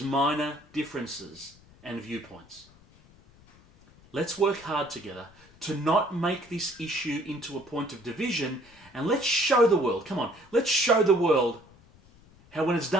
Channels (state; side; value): noise; left; rumble, 26 dB below the sound